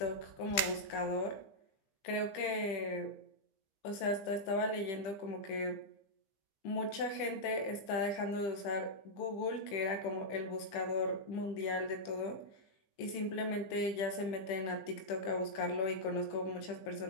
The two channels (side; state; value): right; late; 15 ms